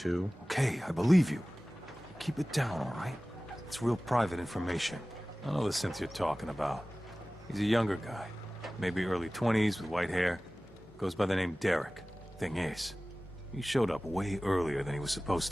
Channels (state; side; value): normal; both; correlation 0.98